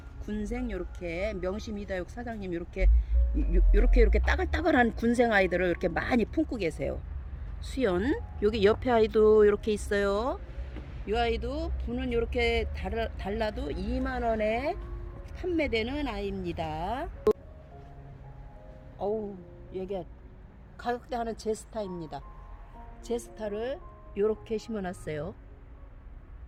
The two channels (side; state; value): both; identical; correlation 1.00